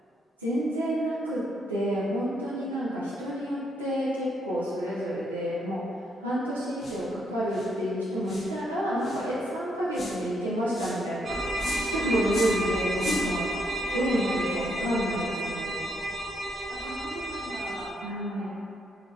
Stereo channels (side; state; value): both; normal; correlation 0.75